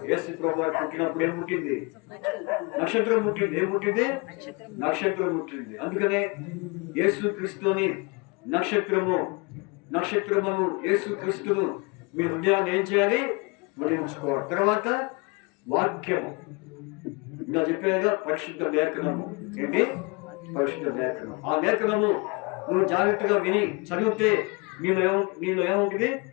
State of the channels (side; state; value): right; quieter; 28.7 dB